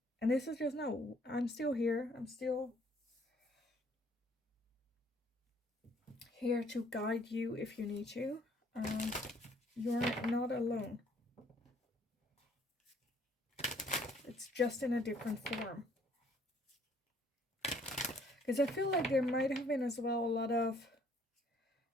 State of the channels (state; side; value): normal; both; correlation 0.62